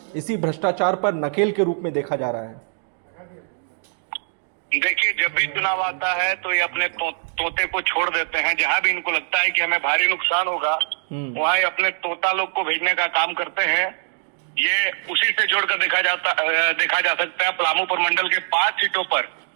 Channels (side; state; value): left; silent; digital silence